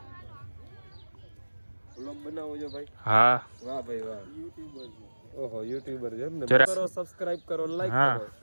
વ્લોગ બનાવો છો ભાઈ હા વાહ ભાઈ વાહ યુટ્યુબર ઓહો યુટ્યુબર છે ને જરા કરો સબસ્ક્રાઇબ કરો લાઈક હા.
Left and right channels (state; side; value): inverted; both; correlation -1.00